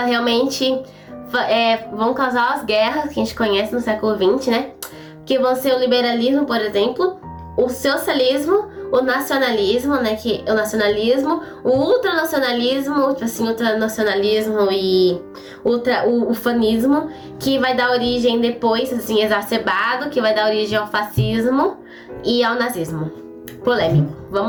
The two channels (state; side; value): identical; both; correlation 1.00